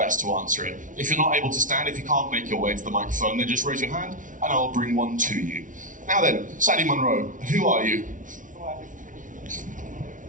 to answer it. If you're not able to stand, if you can't make your way to the microphone, then just raise your hand, and I'll bring one to you. Now then, Sandy Munro, who are you?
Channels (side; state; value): left; late; 0.38 ms